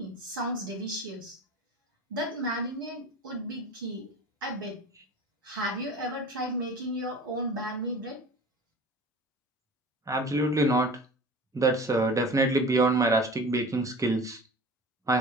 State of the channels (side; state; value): both; normal; correlation 0.39